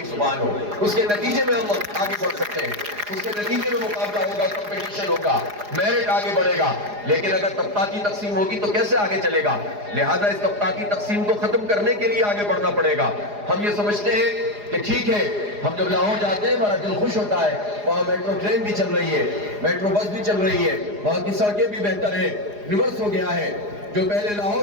زبان ہو۔ اس کے نتیجے میں ہم آگے بڑھ سکتے ہیں، اس کے نتیجے میں مقابلہ ہوگا، کمپٹیشن ہوگا، میرٹ آگے بڑھے گا۔ لیکن اگر طبقاتی تقسیم ہوگی تو کیسے آگے چلے گا؟ لہذا اس طبقاتی تقسیم کو ختم کرنے کے لیے آگے بڑھنا پڑے گا۔ ہم یہ سمجھتے ہیں کہ ٹھیک ہے، ہم جب لاہور جاتے ہیں ہمارا دل خوش ہوتا ہے، وہاں میٹرو ٹرین بھی چل رہی ہے، میٹرو بس بھی چل رہی ہے، وہاں کی سڑکیں بھی بہتر ہیں، ریورس ہو گیا ہے۔ جو پہلے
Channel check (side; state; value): left; late; 4.8 ms